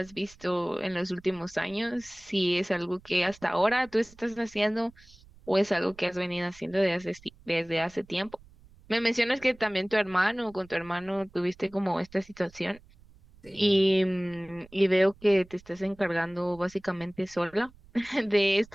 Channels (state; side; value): noise; right; rumble, 25 dB below the sound